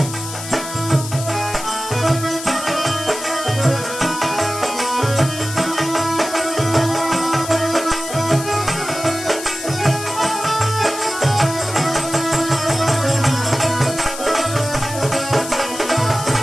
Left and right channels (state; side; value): noise; left; hiss, 9 dB below the sound